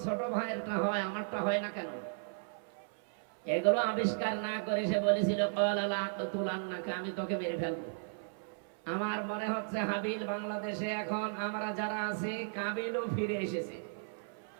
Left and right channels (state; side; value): silent; left; 54 dB below the other